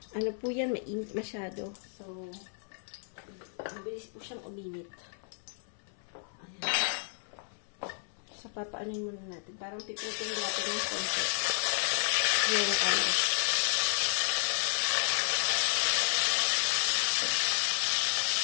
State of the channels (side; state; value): right; silent; 56 dB below the other